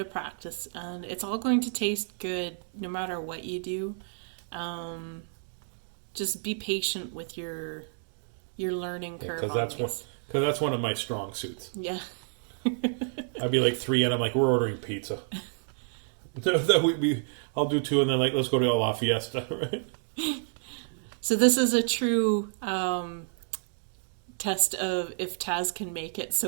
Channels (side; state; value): left; silent; digital silence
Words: practice, and it's all going to taste good no matter what you do. Just be patient with your learning curve. Because that's one of my strong suits. Yeah. I'd be like 3, and I'm like, we're ordering pizza. I'll do 2, and then like let's go to La Fiesta, right? So this is a true test of if Taz can make it,